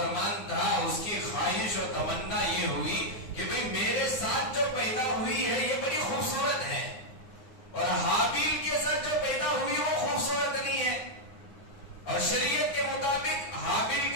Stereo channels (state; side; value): late; right; 9.6 ms